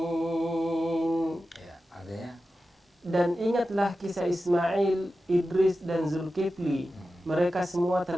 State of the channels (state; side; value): normal; both; correlation 0.93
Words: Ya, artinya dan ingatlah kisah Ismail, Idris dan Zulkifli. Mereka semua